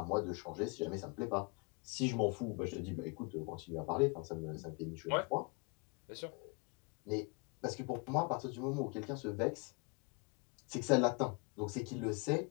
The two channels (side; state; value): right; quieter; 32.1 dB